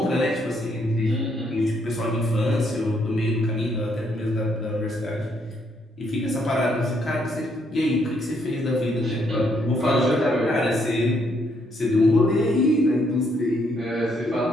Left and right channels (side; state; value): both; normal; correlation 0.72